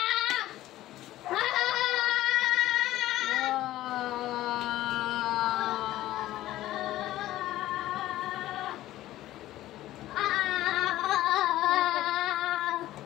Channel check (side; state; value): right; quieter; 15.0 dB